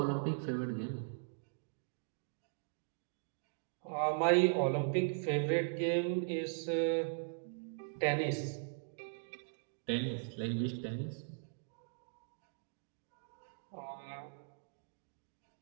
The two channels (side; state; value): left; silent; digital silence